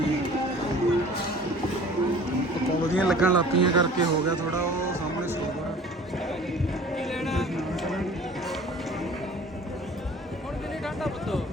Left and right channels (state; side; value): normal; both; correlation 0.47